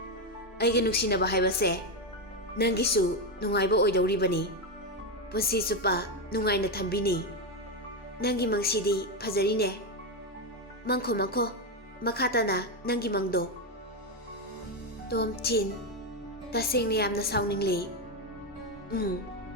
Aiga nungsinaba haibase nangisu nungaiba oidoribani. Punsi chupa nungaina thambini. Nangi mangsidi phajarine. Mangkho makhatana nangi mangdo. Tomthin tasengna yamna sauningli.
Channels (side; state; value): both; normal; correlation 0.09